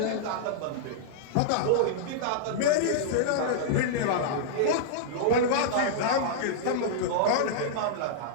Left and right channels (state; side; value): different; both; correlation -0.02